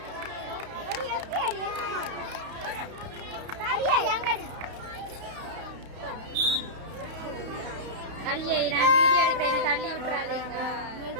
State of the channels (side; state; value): left; late; 32 ms